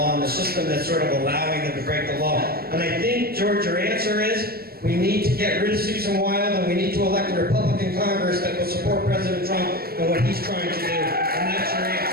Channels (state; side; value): late; left; 0.44 ms